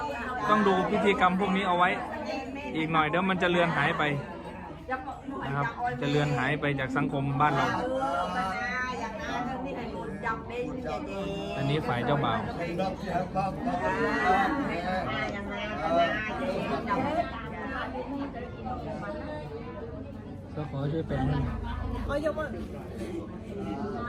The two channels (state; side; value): identical; both; correlation 1.00